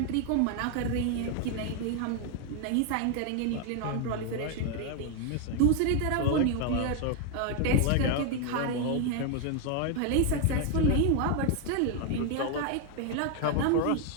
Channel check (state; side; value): different; both; correlation 0.01